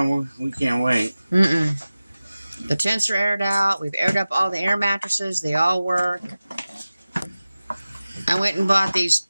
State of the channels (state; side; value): inverted; both; correlation -0.96